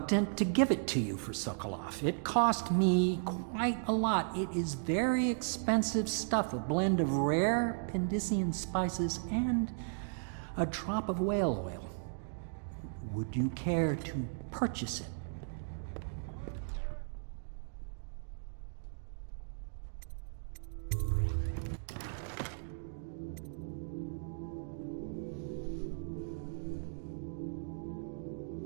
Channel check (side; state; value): left; silent; digital silence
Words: to give it to you for Sokolov. It cost me quite a lot. It is very expensive stuff, a blend of rare Pendician spices and a drop of whale oil. Would you care to purchase it?